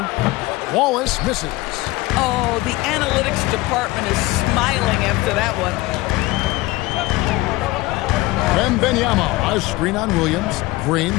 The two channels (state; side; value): quieter; right; 19.9 dB